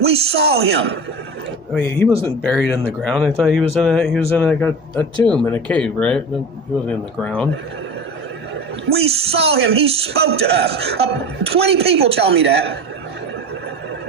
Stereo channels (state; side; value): normal; both; correlation 0.30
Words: we saw him. I mean, he wasn't buried in the ground. I thought he was in a tomb in a cave, right? He wasn't in the ground. We saw him. He spoke to us. 20 people tell me that.